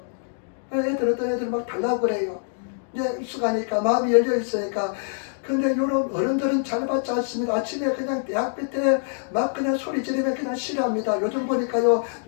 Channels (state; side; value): silent; right; digital silence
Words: 어떤 애들 막 달라고 그래요. 이제 익숙하니까, 마음이 열려 있으니까. 근데 요런 어른들은 잘 받지 않습니다. 아침에 그냥 대학교 때 막 그냥 소리 지르면 그냥 싫어합니다. 요즘 보니까요,